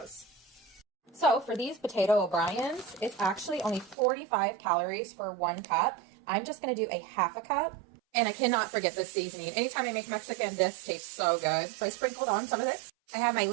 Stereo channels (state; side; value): drops out; left; at 4.0 s